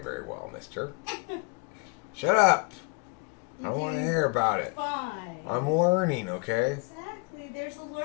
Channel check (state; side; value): quieter; right; 29.8 dB